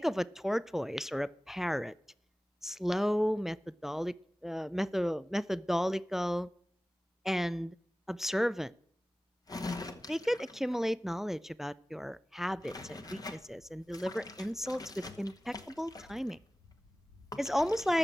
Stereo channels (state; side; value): normal; both; correlation 0.97